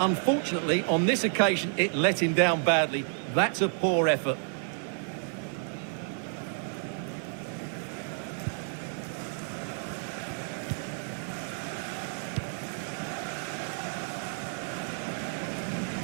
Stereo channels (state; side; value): silent; left; 57 dB below the other